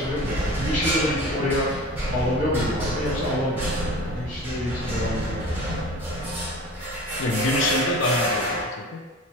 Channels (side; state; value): both; normal; correlation 0.38